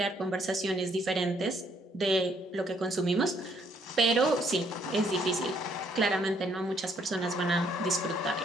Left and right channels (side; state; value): both; normal; correlation 0.68